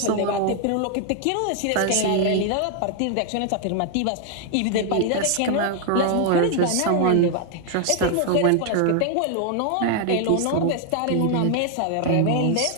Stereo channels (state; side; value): different; both; correlation 0.00